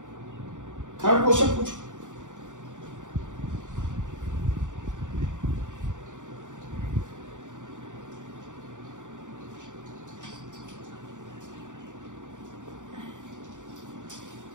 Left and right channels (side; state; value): left; late; 0.86 ms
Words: थर्ड क्वेश्चन पूछो।